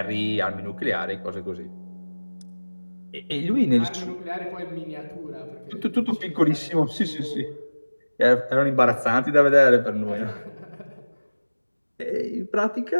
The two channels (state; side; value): inverted; both; correlation -1.00